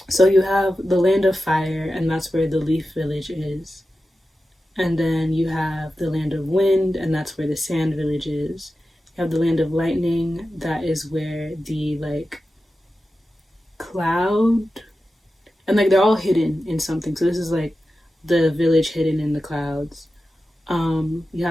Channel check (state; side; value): normal; both; correlation 0.93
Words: So you have the land of fire, and that's where the leaf village is. And then you have the land of wind, and that's where the sand village is. You have the land of lightning, that is where the like cloud, and like they're all hidden in something. So this is like the village hidden in the clouds. You